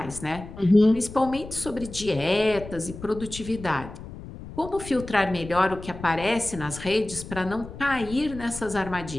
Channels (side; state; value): left; noise; rumble, 13 dB below the sound